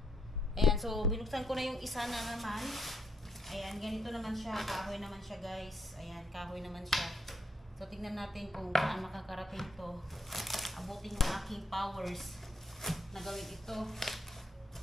Ayan, so binuksan ko na yung isa na naman. Ayan, ganito naman siya, kahoy naman siya guys. Ayan, kahoy naman siya. So tingnan natin kung saan makakarating to. Abutin yung aking powers na gawin ito.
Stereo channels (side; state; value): both; normal; correlation 0.75